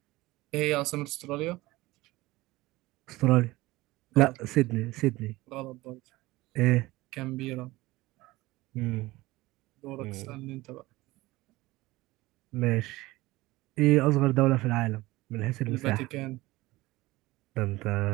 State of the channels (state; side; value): quieter; left; 19.6 dB